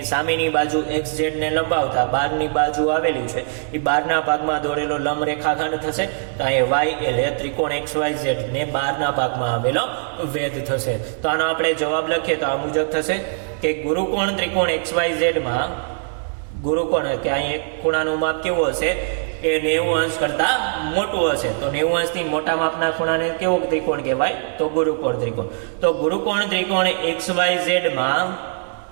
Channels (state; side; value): silent; left; digital silence